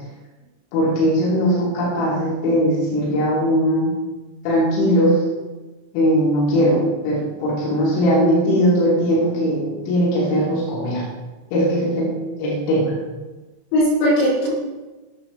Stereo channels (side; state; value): right; late; 34 ms